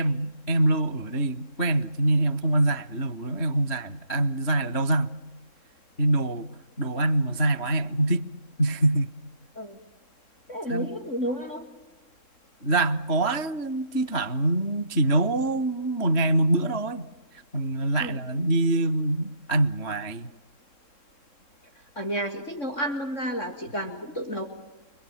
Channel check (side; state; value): right; late; 3.7 ms